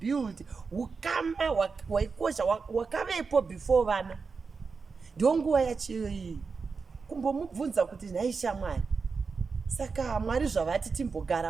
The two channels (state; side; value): quieter; left; 4.9 dB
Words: ukama hwaikosha hwakavepo before vana. Ndiyo nguva yachiyo iyi kumbomubvunza kuti nhai shamwari, saka Mwari zvavati